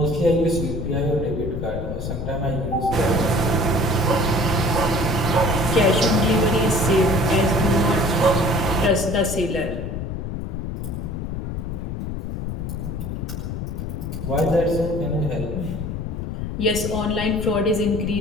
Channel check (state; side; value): noise; left; rumble, 5 dB below the sound